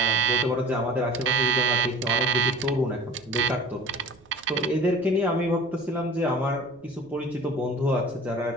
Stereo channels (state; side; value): noise; right; rumble, 29 dB below the sound